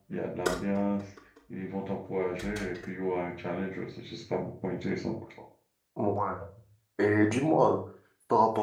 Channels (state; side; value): identical; both; correlation 1.00